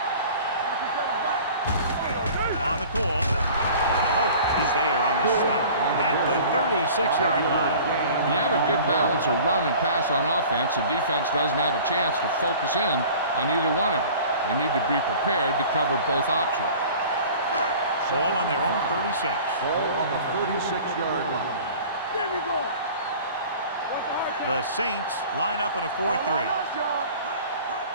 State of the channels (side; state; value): both; inverted; correlation -0.44